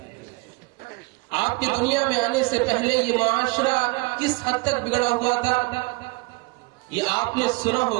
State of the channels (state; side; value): quieter; left; 26.1 dB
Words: آپ کی دنیا میں آنے سے پہلے یہ معاشرہ کس حد تک بگڑا ہوا تھا یہ آپ نے سنا